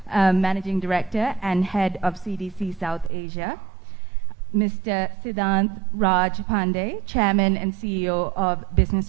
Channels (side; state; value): left; drops out; at 3.1 s